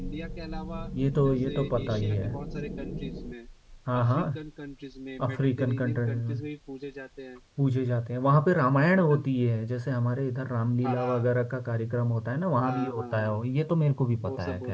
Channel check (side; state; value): both; identical; correlation 1.00